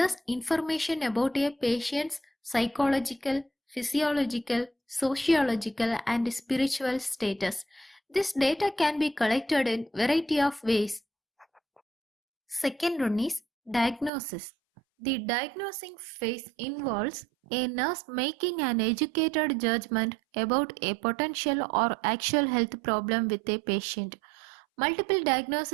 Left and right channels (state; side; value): drops out; left; at 14.1 s